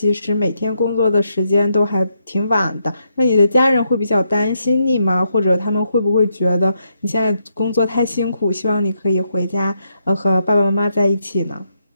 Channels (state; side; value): inverted; both; correlation -0.79